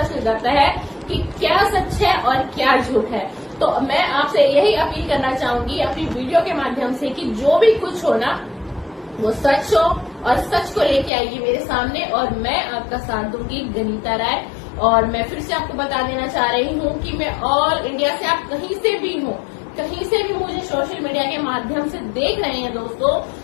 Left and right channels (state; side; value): drops out; right; at 11.1 s